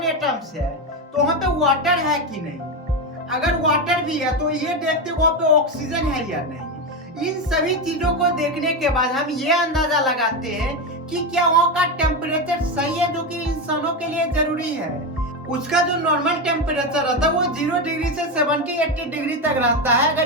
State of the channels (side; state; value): both; normal; correlation 0.13